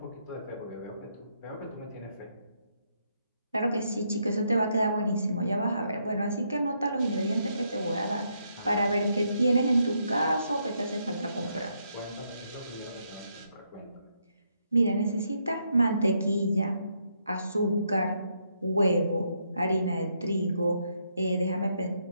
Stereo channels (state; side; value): inverted; both; correlation -0.77